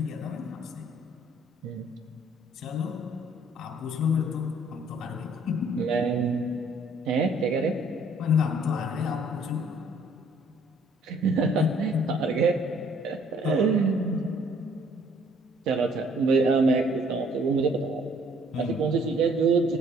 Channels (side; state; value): both; normal; correlation 0.60